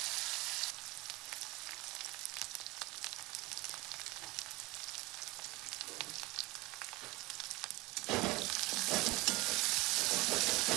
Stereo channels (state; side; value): quieter; left; 22.3 dB